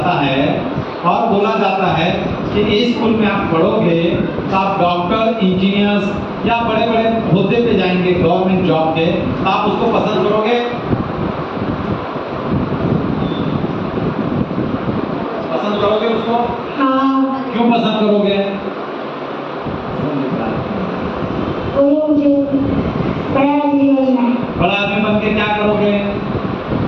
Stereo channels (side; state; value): both; identical; correlation 1.00